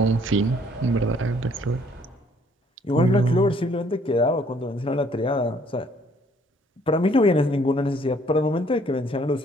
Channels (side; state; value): both; normal; correlation 0.62